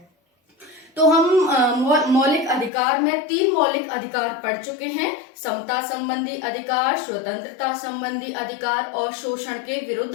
तो हम मौलिक अधिकार में 3 मौलिक अधिकार पढ़ चुके हैं: समता संबंधी अधिकार, स्वतंत्रता संबंधी अधिकार और शोषण के विरुद्ध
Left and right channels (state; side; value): drops out; right; at 2.7 s